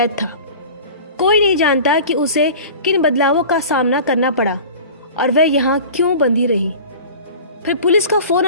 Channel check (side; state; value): both; inverted; correlation -0.39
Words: था। कोई नहीं जानता कि उसे किन बदलावों का सामना करना पड़ा और वह यहाँ क्यों बंधी रही। फिर पुलिस का फोन